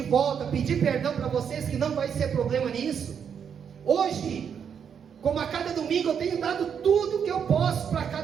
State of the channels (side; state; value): left; quieter; 7.5 dB